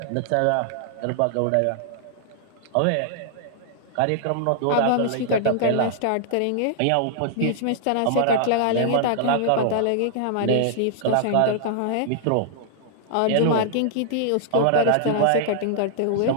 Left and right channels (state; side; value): different; both; correlation -0.01